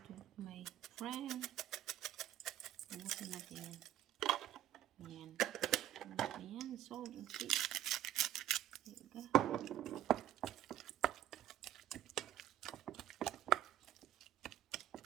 my friend. Ubusin natin yan. Ayan. Ayan, salt and pepper. There you go.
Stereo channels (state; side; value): quieter; left; 12.1 dB